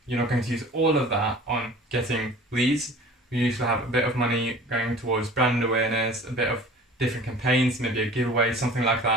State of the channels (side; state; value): both; normal; correlation 0.44